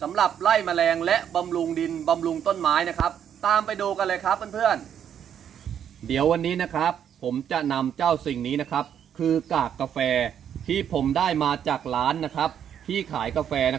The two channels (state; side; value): quieter; left; 9.0 dB